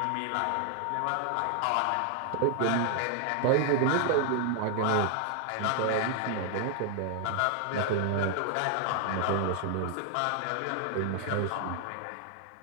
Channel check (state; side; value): different; both; correlation 0.00